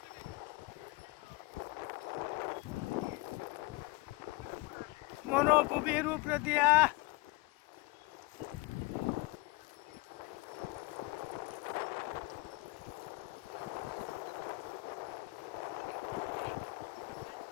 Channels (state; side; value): quieter; right; 23.1 dB